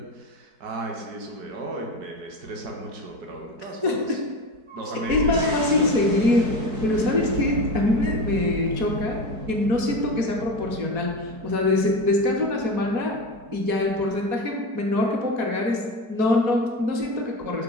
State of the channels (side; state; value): left; late; 4.6 ms